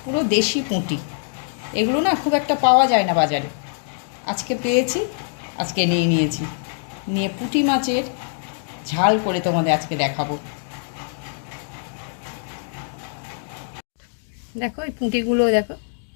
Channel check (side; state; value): right; silent; digital silence